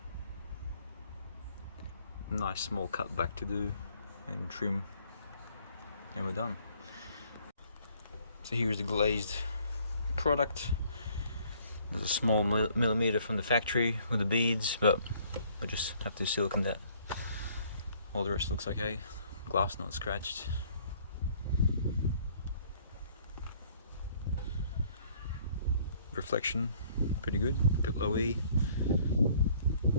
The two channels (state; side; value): inverted; both; correlation -0.61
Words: Nice small cut back to do and trim, and we're done. So here's the glazed product. There's a small millimeter from the factory with the beads, but we just have to silicone that. All the rest looks okay. Glass not scratched. Reflection, pretty good. Bit low E.